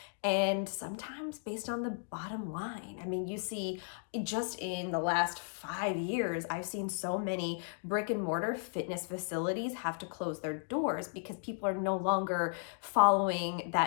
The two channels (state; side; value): silent; right; digital silence